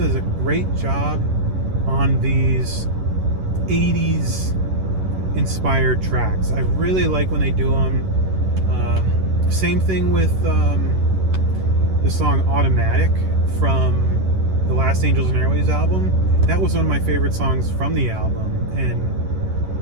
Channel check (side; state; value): left; late; 11 ms